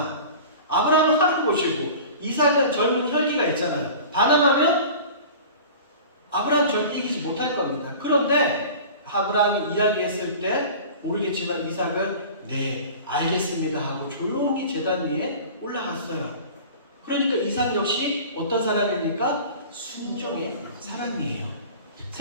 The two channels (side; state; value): both; inverted; correlation -0.39